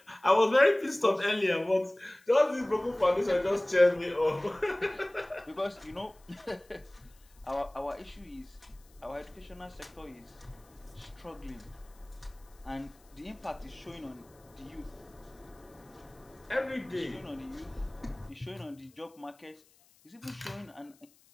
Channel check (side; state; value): left; noise; hiss, 30 dB below the sound